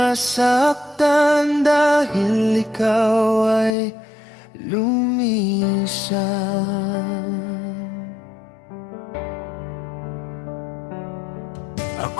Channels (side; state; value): right; drops out; at 3.7 s